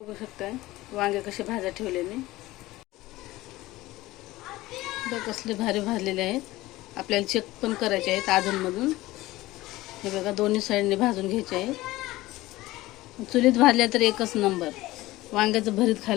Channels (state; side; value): quieter; right; 18.2 dB